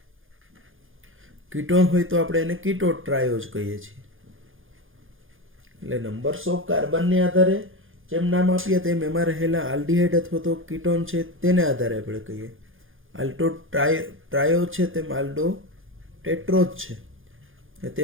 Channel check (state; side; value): late; left; 0.59 ms